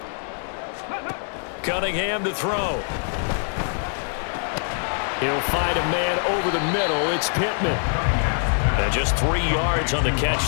Cunningham to throw. He'll find a man over the middle. It's Pittman. And just 3 yards on the catch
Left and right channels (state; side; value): silent; right; 63 dB below the other